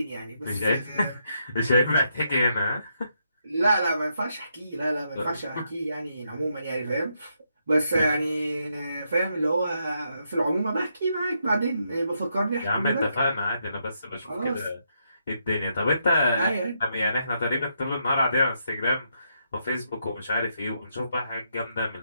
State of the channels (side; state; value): both; inverted; correlation -0.79